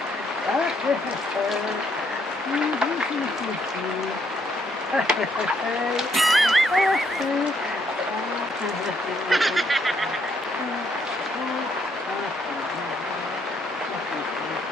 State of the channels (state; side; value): normal; both; correlation 0.72